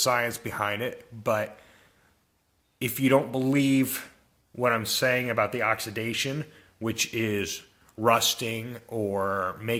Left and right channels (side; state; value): both; identical; correlation 1.00